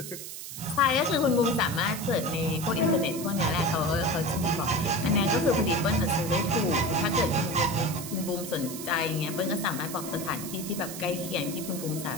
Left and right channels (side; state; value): right; noise; hiss, 9 dB below the sound